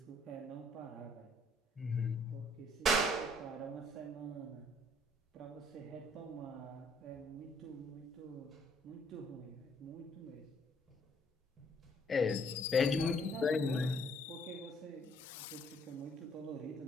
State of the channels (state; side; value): normal; both; correlation 0.64